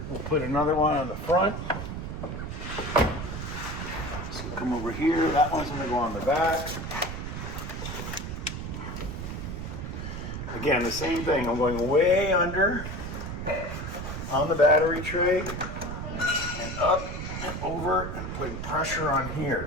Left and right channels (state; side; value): noise; right; rumble, 6 dB below the sound